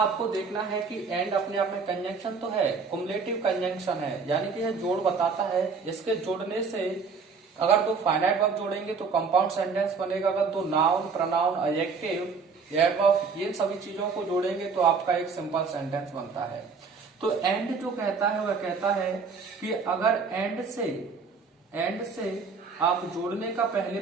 देखना है कि एंड अपने आप में कंजंक्शन तो है, कुमुलेटिव कंजंक्शन है, यानी कि यह जोड़ बताता है। इसके जोड़ने से अगर दो फाइनाइट वर्ब जोड़ेंगे तो कंपाउंड सेंटेंस बनेगा। अगर दो नाउन, प्रोनाउन, एडजेक्टिव, एडवर्ब ये सभी चीजों को जोड़ेंगे तो आपका एक सिंपल सेंटेंस बनता है। तो एंड जो कहता है वह कहता है कि अगर एंड से आप जोड़ने का पहले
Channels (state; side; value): quieter; left; 5.1 dB